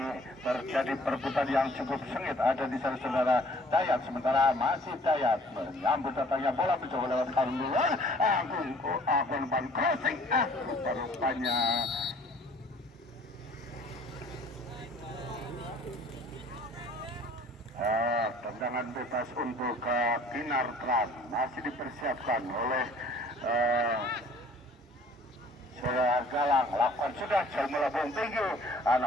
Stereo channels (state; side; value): normal; both; correlation 0.54